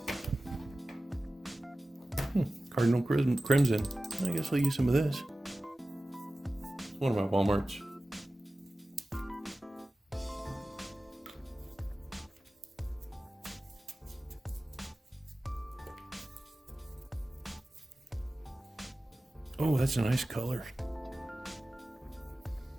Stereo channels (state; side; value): normal; both; correlation 0.96